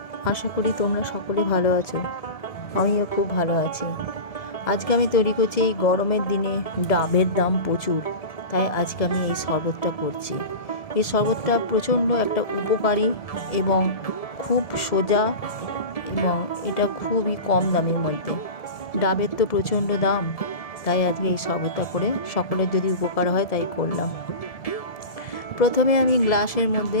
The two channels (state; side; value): late; right; 1.7 ms